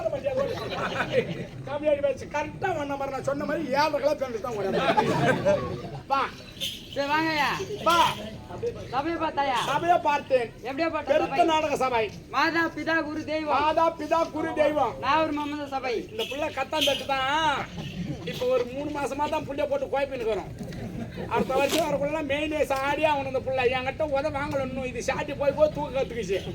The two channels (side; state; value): both; identical; correlation 1.00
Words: மாட்டியா கம்மியாடி வச்சு கரெக்டா வந்த மாதிரி நான் சொன்ன மாதிரி 7 கிலோ பேண்ட் தான் ஓட வா சரி வாங்கய்யா வா சபை பார்த்தாயா சபையை பார்த்தேன் எப்படியா பார்த்த பெருத்த சபை நாடக சபை மாதா பிதா குரு தெய்வம் மாதா பிதா குரு தெய்வம் நாகூர் மம்மத சபை இந்த புள்ள கத்தான் தட்டு தான் இப்போ ஒரு 3 மாசமா தான் புள்ளைய போட்டு குழப்பின்னு இருக்கிறோம் அடுத்த வருஷம் வரக்குள்ள மெயின் சாடியா அவனு இந்த புள்ள என்கிட்ட உத வாங்கல இன்னும் இது சாட்டி போய் போய் தூக்க கத்துக்குச்சு